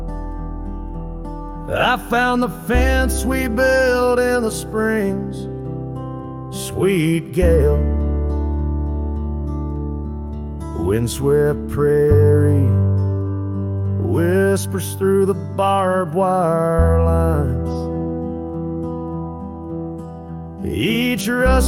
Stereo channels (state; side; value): identical; both; correlation 1.00